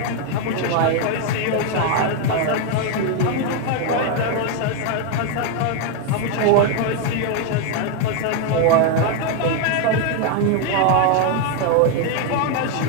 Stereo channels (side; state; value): both; different; correlation 0.01